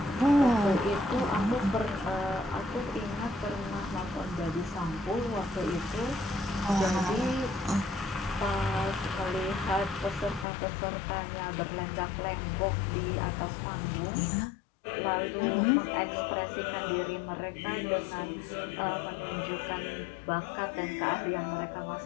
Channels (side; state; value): right; drops out; at 10.5 s